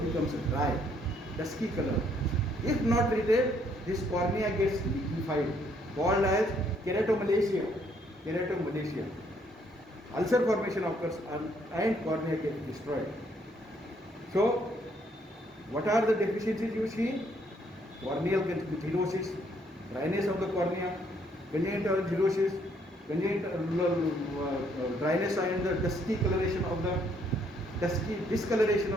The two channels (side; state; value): both; normal; correlation 0.68